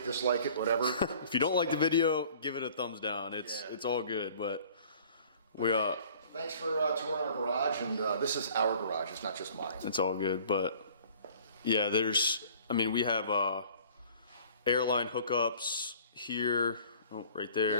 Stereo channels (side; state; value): both; inverted; correlation -0.51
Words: dislike it, whatever. If you don't like the video, give it a thumbs down. It's all good, but Thanks for touring our garage, and this is our garage, it's not just mine. It's all good, but yeah, we have airline hookups here, right